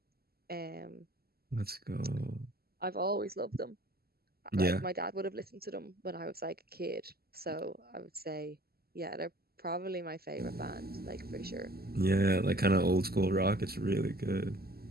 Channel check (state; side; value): late; left; 0.45 ms